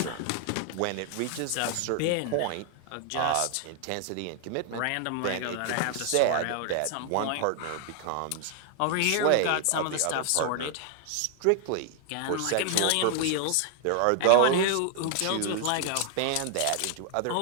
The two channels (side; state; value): both; different; correlation 0.00